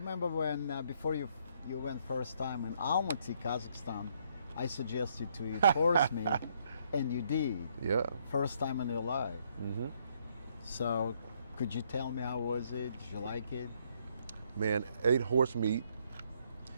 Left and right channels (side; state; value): both; inverted; correlation -0.70